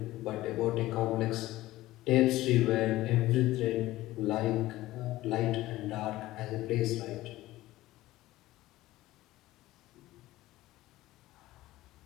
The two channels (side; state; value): right; quieter; 16.7 dB